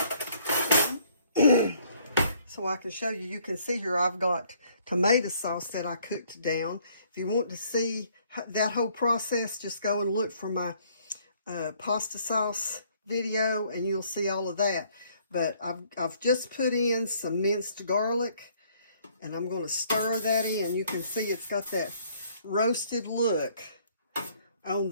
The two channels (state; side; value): inverted; both; correlation -0.63